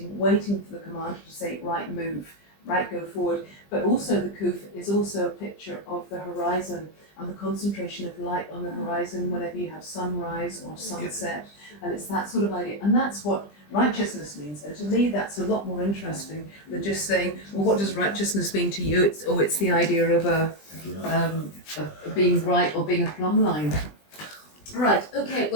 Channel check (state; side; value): late; right; 20 ms